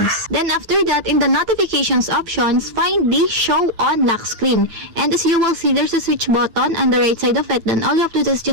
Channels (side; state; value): left; late; 9.0 ms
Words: Then after that, in the notifications options, find the show on lock screen. And as you will see, there's a switch button on the right side of it. Then all you have to do is